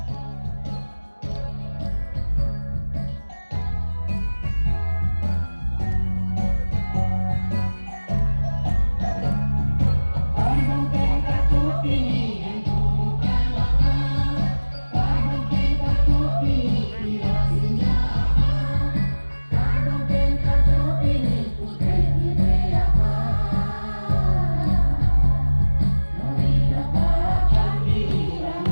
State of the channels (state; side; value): inverted; both; correlation -1.00